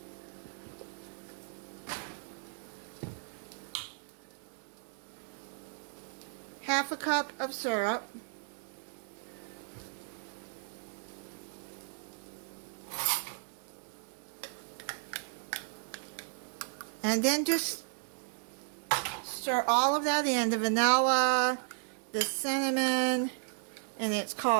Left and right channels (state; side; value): silent; left; digital silence